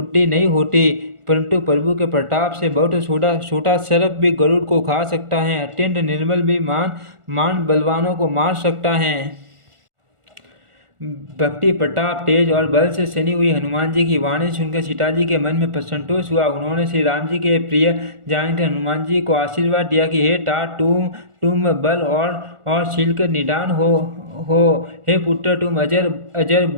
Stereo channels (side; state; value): left; late; 1.4 ms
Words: नहीं होती, परंतु प्रभु के प्रताप से बहुत छोटा सर्प भी गरुड़ को खा सकता है। अत्यंत निर्मल भी मान बलवानों को मार सकता है। भक्ति, प्रताप, तेज और बल से सनी हुई हनुमान जी की वाणी सुनकर सीता जी के मन में संतोष हुआ। उन्होंने श्री राम जी के प्रिय जानकर हनुमान जी को आशीर्वाद दिया कि हे तात, तुम बल और शील के निदान हो। हे पुत्र, तुम अजर